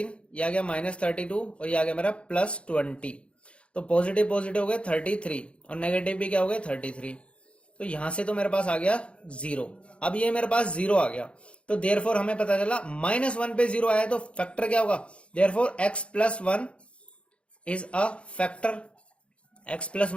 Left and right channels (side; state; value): right; late; 0.059 ms